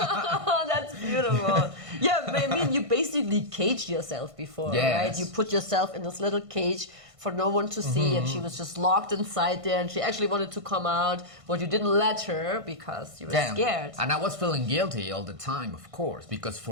that's beautiful. Yeah, I mean, you basically caged yourself before, Yes. right? You put yourself in this little cage for no one to see, and she was just locked inside there, and she actually wanted to come out, but you didn't let her because you were scared. And I was feeling guilty all the time, of course, because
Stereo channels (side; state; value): left; late; 1.5 ms